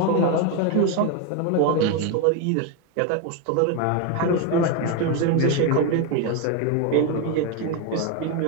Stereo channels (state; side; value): different; both; correlation 0.02